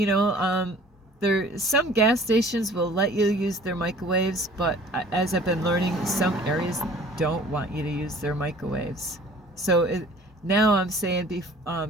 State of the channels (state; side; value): normal; both; correlation 0.50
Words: know, some gas stations will let you use their microwaves, but as I've been learning, some areas don't want you to use their microwaves. So now I'm saying,